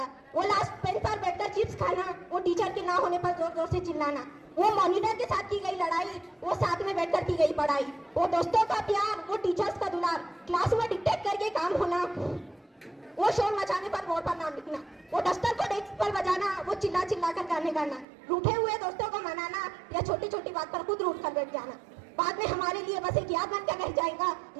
वो लास्ट बेंच पर बैठकर चिप्स खाना, वो टीचर के ना होने पर जोर जोर से चिल्लाना, वो मॉनिटर के साथ की गई लड़ाई, वो साथ में बैठकर की गई पढ़ाई, वो दोस्तों का प्यार, वो टीचर्स का दुलार, क्लास में डिक्टेट करके काम होना, वो शोर मचाने पर बोर्ड पर नाम लिखना, वो दस्तर को डेस्क पर बजाना, वो चिल्ला चिल्ला कर गाने गाना, रूठे हुए दोस्तों को मनाना या छोटी छोटी बात पर खुद रूठ कर बैठ जाना। बाद में हमारे लिए बस एक याद बनकर रह जाएगा,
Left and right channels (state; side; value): drops out; left; at 18.1 s